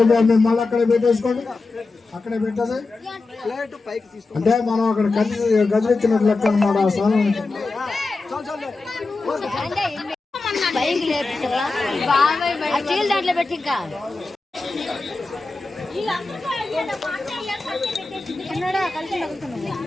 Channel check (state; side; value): quieter; right; 3.6 dB